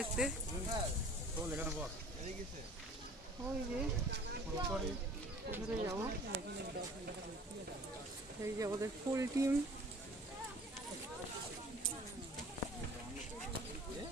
ওই যে ওখানে যাবো, এই যে আমাদের ফুল টিম।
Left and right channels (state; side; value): normal; both; correlation 0.48